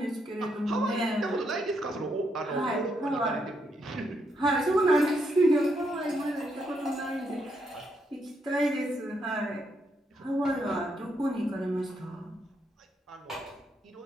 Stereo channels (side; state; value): both; normal; correlation 0.78